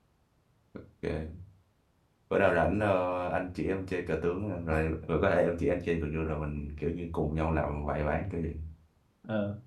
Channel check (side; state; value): both; identical; correlation 1.00